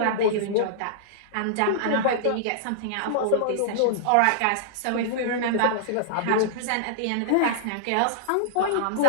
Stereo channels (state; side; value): different; both; correlation -0.02